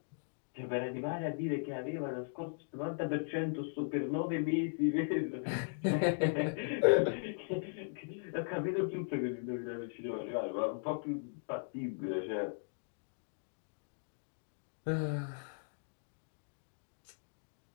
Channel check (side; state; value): right; silent; digital silence